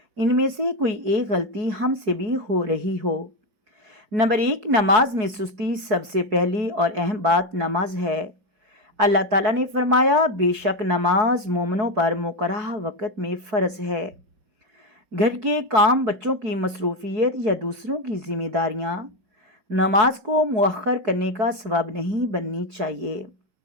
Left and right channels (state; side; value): late; left; 4.6 ms